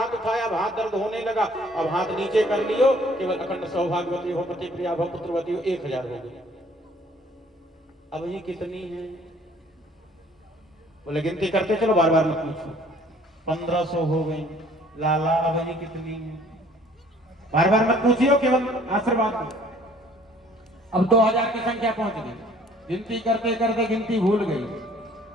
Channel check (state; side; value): normal; both; correlation 0.56